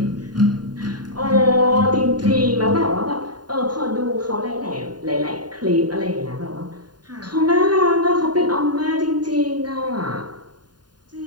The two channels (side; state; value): left; late; 0.70 ms